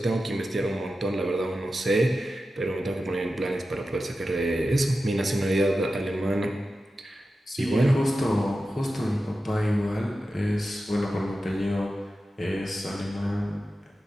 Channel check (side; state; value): both; normal; correlation 0.92